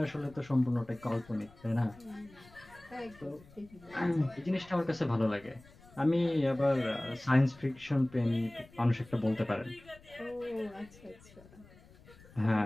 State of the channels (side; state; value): left; noise; rumble, 24 dB below the sound